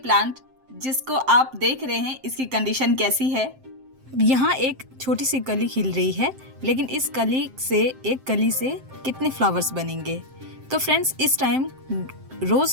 जिसको आप देख रहे हैं, इसकी कंडीशन कैसी है। यहाँ एक छोटी सी कली खिल रही है, लेकिन इस कली से एक कली से कितने फ्लावर्स बनेंगे। तो फ्रेंड्स, इस टाइम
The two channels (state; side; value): late; left; 7.6 ms